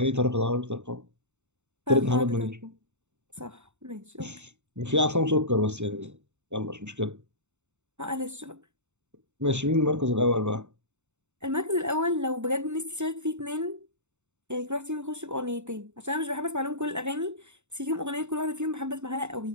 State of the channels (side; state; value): left; late; 0.83 ms